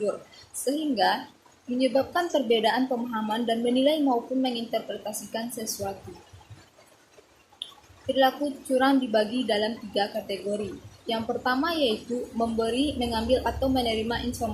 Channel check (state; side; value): identical; both; correlation 1.00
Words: sehingga menyebabkan perbedaan pemahaman dan menilai maupun menginterpretasikan sesuatu. Perilaku curang dibagi dalam 3 kategori. Yang pertama yaitu memberi, mengambil, atau menerima